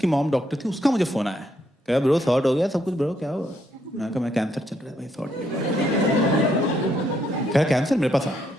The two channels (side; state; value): both; normal; correlation 0.74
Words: मॉम डॉक्टर थी, उसका मुझे फोन आया। कहा ब्रो सॉर्ट हो गया सब कुछ ब्रो, क्या हुआ? मैं कहा मैं कैंसर चल रहा है भाई, सॉर्ट नहीं हुआ। कह कैंसर मेरे पास आ,